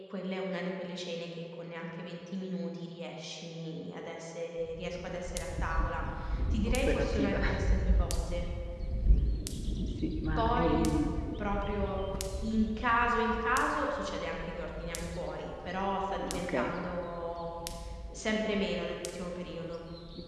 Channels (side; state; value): both; identical; correlation 1.00